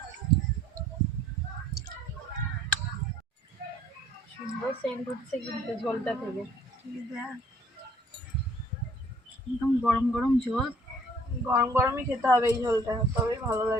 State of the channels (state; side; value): normal; both; correlation 0.59